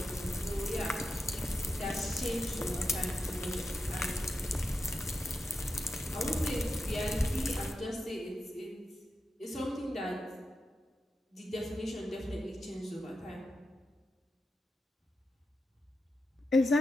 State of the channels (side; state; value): both; normal; correlation 0.88